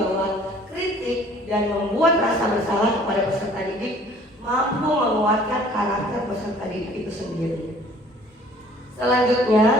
kritik dan membuat rasa bersalah kepada peserta didik mampu menguatkan karakter peserta didik itu sendiri. Selanjutnya,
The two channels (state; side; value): normal; both; correlation 0.54